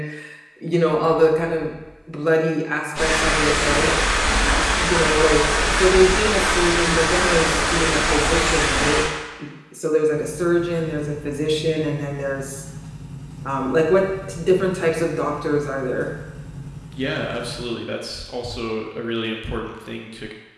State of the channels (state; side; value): identical; both; correlation 1.00